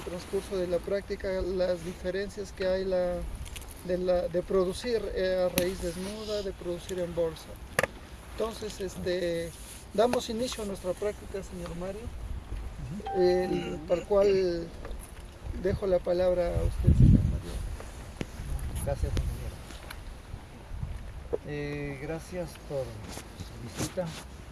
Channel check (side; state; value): both; identical; correlation 1.00